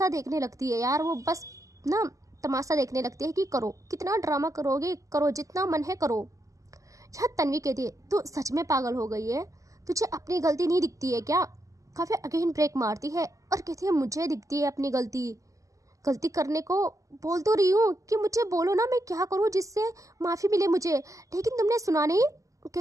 देखने लगती है यार, वो बस ना तमाशा देखने लगती है कि करो, कितना ड्रामा करोगे, करो जितना मन है करो। यहाँ तन्वी कहती है तू सच में पागल हो गई है, तुझे अपनी गलती नहीं दिखती है क्या। काव्या अगेन ब्रेक मारती है और कहती है मुझे दिखती है अपनी गलती करने को बोल तो रही हूँ कि मुझे बोलो ना, मैं क्या करूँ जिससे माफ़ी मिले मुझे, लेकिन तुमने सुना नहीं,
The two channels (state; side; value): late; left; 0.16 ms